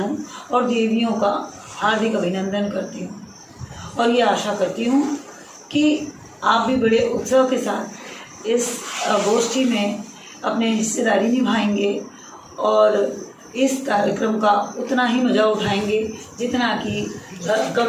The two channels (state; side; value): identical; both; correlation 1.00